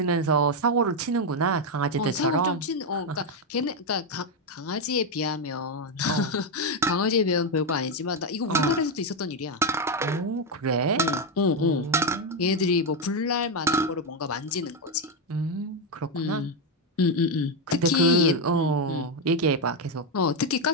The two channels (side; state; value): both; normal; correlation 0.05